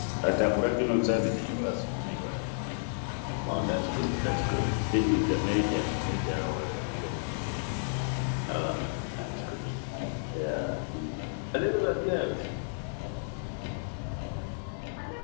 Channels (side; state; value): right; silent; digital silence